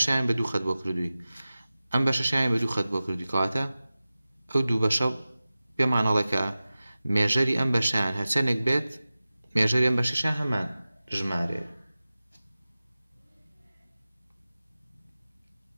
بدو خد بو كردوي ام بشاين بدو خد بو كردوي كواتا او دو بشا بمعنى لك ميجري ام بشاين هرچنك بيت ميجري ام بشاين همان جماري.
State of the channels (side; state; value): both; inverted; correlation -0.96